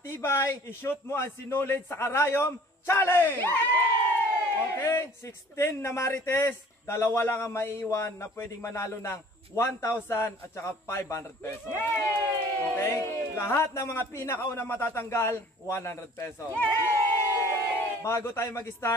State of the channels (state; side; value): normal; both; correlation 0.51